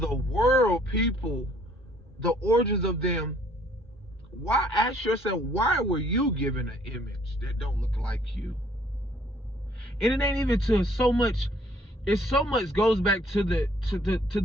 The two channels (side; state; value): both; normal; correlation 0.62